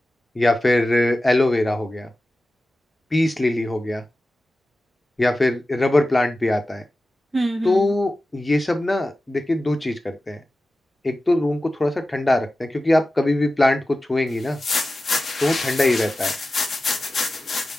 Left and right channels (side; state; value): both; normal; correlation 0.94